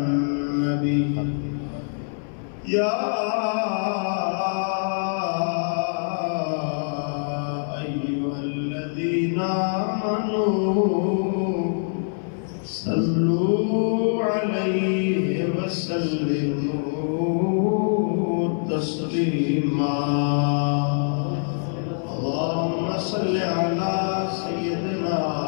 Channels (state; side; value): silent; right; 62 dB below the other